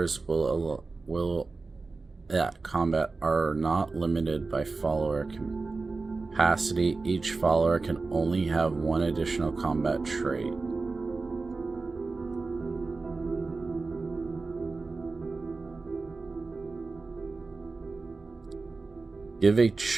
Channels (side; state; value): left; quieter; 3.9 dB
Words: will combat are not limited by follower capacity. Each follower can only have one additional combat trait. Give a